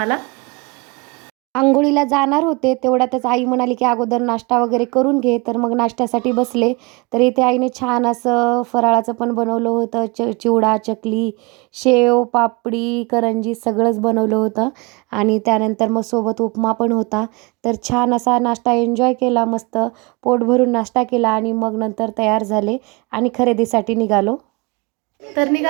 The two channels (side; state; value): left; quieter; 26.9 dB